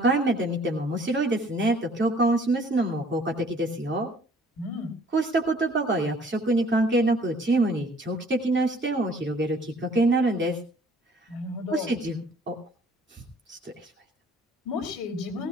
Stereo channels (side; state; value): both; normal; correlation 0.56